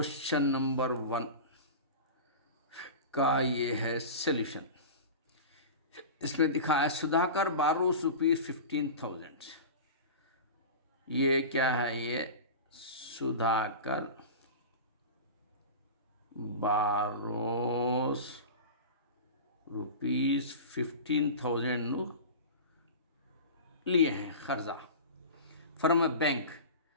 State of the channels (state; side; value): inverted; both; correlation -0.31